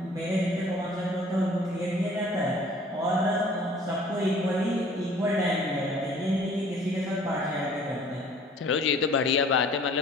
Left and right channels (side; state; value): both; normal; correlation 0.52